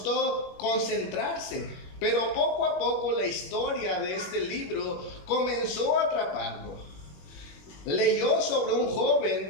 concentrarse, pero poco a poco la historia de este libro comenzó a atraparlo. Leyó sobre un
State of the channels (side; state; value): right; late; 21 ms